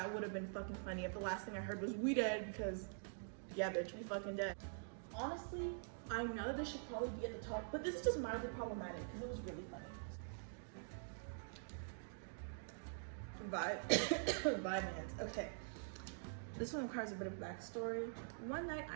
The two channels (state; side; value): silent; left; digital silence